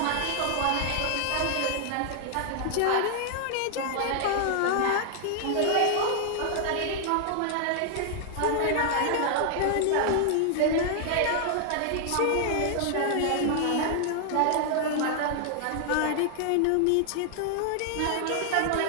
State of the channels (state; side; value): different; both; correlation 0.00